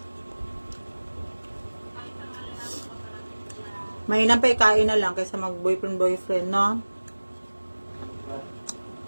Mainam pa ikain na lang kaysa mag-boyfriend, no?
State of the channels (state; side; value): inverted; both; correlation -1.00